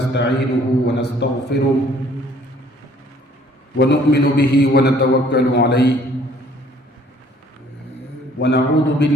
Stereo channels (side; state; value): both; normal; correlation 0.58